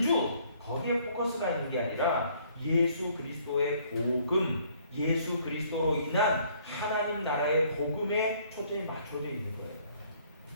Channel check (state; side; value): inverted; both; correlation -0.62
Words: 거기에 포커스가 있는 게 아니라 예수 그리스도의 복음, 예수 그리스도로 인한 하나님 나라의 복음에 초점이 맞춰져 있는 거예요.